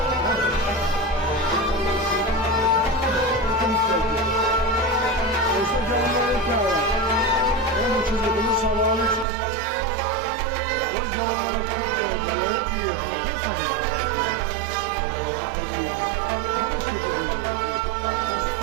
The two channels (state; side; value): drops out; left; at 9.2 s